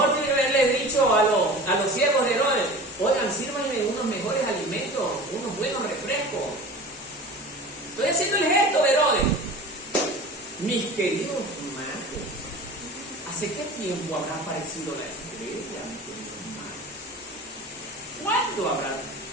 tiene que haberle dicho a los siervos de Herodes, oigan, sírvanme unos mejores alimentos, unos buenos refrescos. Estoy haciendo el gesto, Herodes. Mis queridos hermanos, ¿hace qué tiempo habrá aparecido la estrella, mis queridos hermanos? ¿Cuándo habrá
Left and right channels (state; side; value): normal; both; correlation 0.37